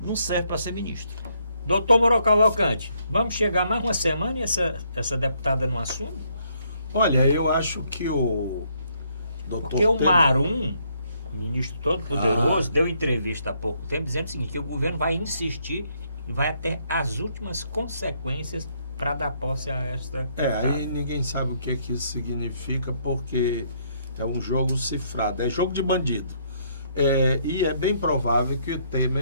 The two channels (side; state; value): both; inverted; correlation -0.71